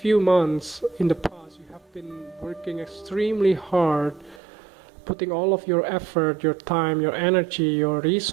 few months in the past, you have been working extremely hard, putting all of your effort, your time, your energy, your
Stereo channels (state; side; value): drops out; left; at 4.4 s